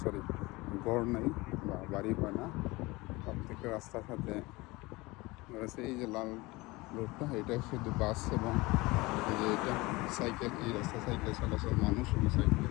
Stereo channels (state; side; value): quieter; right; 22.4 dB